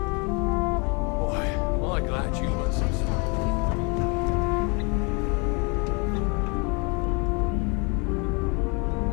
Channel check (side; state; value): right; quieter; 32.1 dB